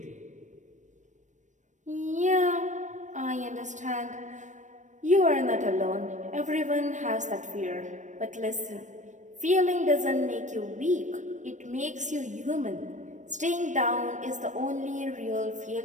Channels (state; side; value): late; left; 0.35 ms